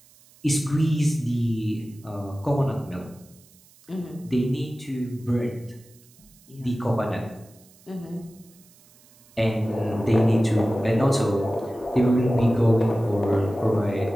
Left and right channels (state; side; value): noise; right; hiss, 28 dB below the sound